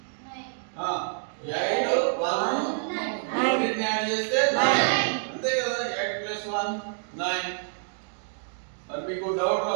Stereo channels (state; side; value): silent; left; digital silence